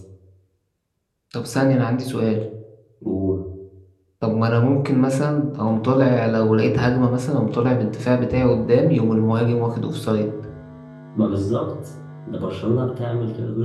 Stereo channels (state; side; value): identical; both; correlation 1.00